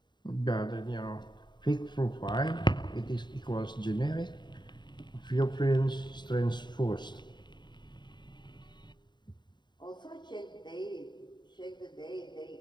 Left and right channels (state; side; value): late; right; 0.22 ms